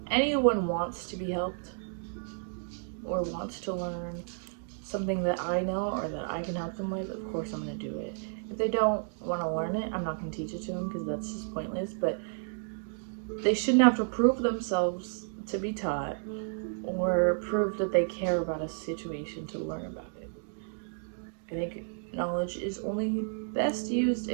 anyone wants to be helped or wants to learn something that I know or that I can help them with, of course I'm going to do it. If they don't want to learn it, I'm not going to teach it to them because that's just pointless, but they shouldn't have to prove themselves to be taught or prove that they care about a situation to learn about it. I think knowledge is only best used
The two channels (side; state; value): left; silent; digital silence